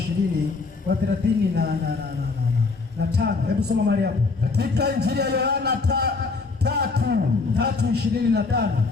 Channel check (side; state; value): right; quieter; 4.1 dB